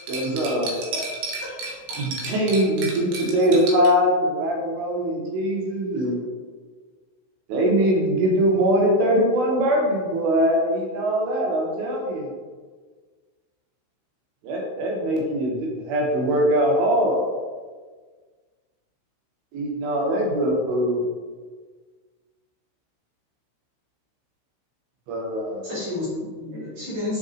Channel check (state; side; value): late; left; 16 ms